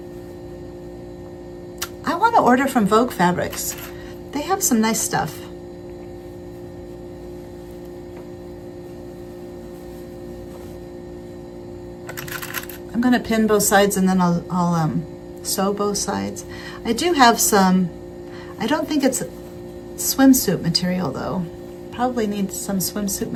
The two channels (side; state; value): both; identical; correlation 1.00